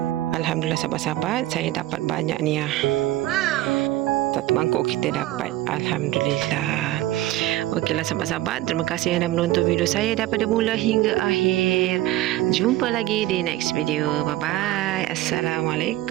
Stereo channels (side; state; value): left; quieter; 15.7 dB